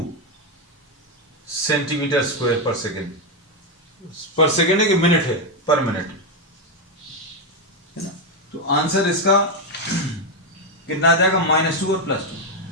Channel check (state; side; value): normal; both; correlation 0.05